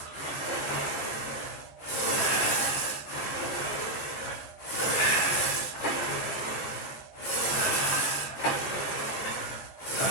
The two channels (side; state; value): right; late; 14 ms